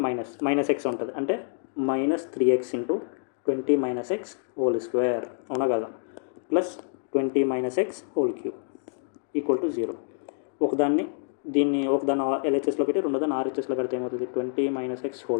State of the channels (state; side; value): silent; right; digital silence